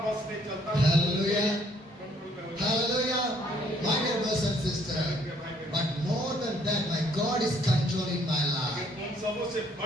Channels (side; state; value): both; normal; correlation 0.64